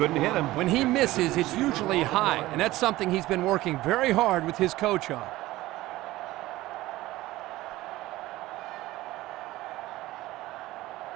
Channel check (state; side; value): quieter; left; 17.4 dB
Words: hit him. When he misses, it's usually high, and that's something he's been working very hard with his coach on.